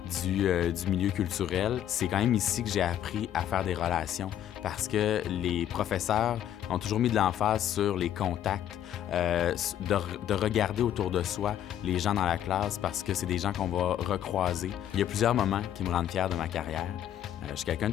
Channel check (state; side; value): quieter; right; 10.8 dB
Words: du milieu culturel. C'est quand même ici que j'ai appris à faire des relations parce que les professeurs ont toujours mis de l'emphase sur les contacts, de regarder autour de soi les gens dans la classe parce que c'est des gens qu'on va recroiser. Il y a plusieurs moments qui me rendent fier de ma carrière. Je suis quelqu'un